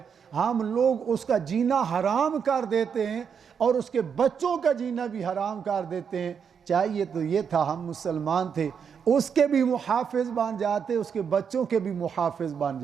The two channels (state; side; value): quieter; left; 7.0 dB